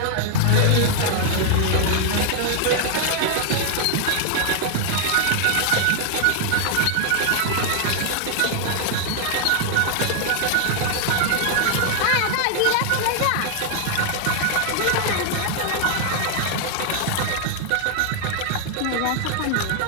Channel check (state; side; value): different; both; correlation 0.00